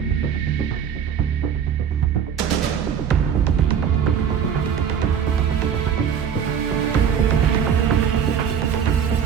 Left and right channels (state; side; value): quieter; left; 7.9 dB